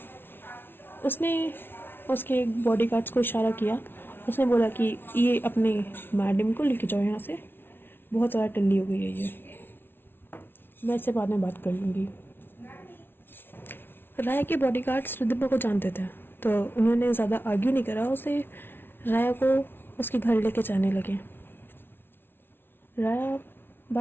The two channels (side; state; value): right; late; 0.11 ms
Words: उसने उसके बॉडीगार्ड्स को इशारा किया। उसने बोला कि ये अपने मैडम को लेके जाओ यहाँ से, बहुत ज़्यादा टल्ली हो गई है ये, मैं इससे बाद में बात कर लूँगी। राया के बॉडीगार्ड्स रिद्धिमा को जानते थे, तो उन्होंने ज़्यादा आर्ग्यू नहीं करा, उसे राया को उसके घर लेके जाने लगे। राया